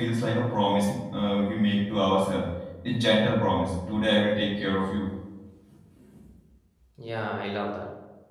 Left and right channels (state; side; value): identical; both; correlation 1.00